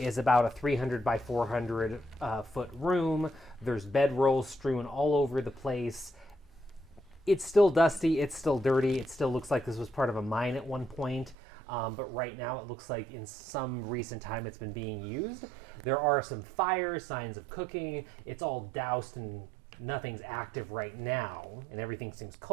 about a 300 by 400 foot room. There's bedrolls strewn all over the place. It's still dusty, it's still dirty, it still looks like this was part of a mine at one point, but right now it looks like in some recent time it's been being used. There are some fires, signs of cooking. It's all doused and nothing's active right now, and everything seems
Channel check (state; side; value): drops out; left; at 11.4 s